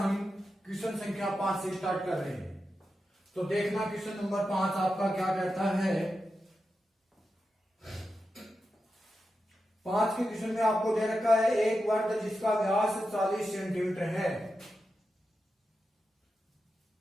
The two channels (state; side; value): normal; both; correlation 0.90